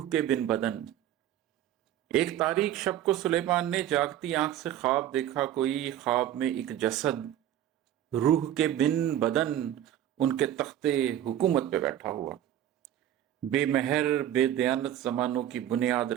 के बिन बदन। एक तारीख शब को सुलेमान ने जागती आंख से ख्वाब देखा कोई। ख्वाब में एक जसद रूह के बिन बदन उनके तख्ते हुकूमत पे बैठा हुआ, बेमहर बेदयानत जमानों की बुनियाद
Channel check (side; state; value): left; quieter; 11.6 dB